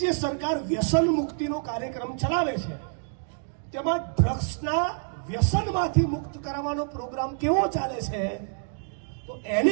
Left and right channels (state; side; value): silent; left; digital silence